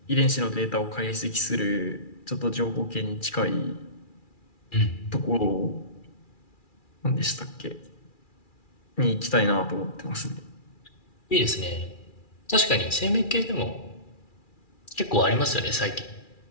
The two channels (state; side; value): late; right; 2.4 ms